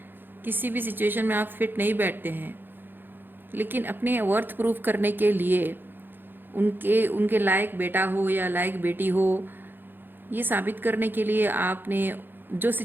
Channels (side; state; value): left; late; 0.097 ms